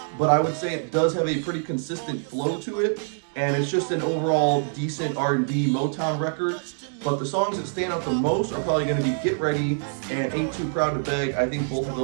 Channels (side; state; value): left; silent; digital silence